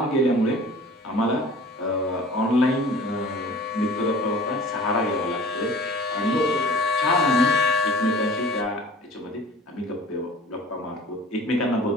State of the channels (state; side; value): normal; both; correlation 0.44